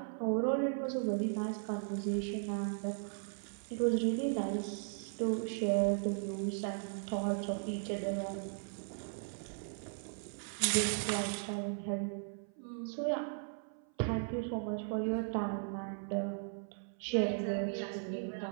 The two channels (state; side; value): silent; left; 53 dB below the other